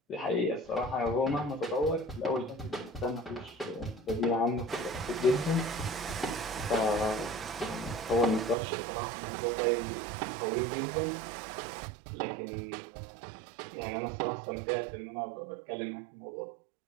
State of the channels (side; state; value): left; drops out; at 8.6 s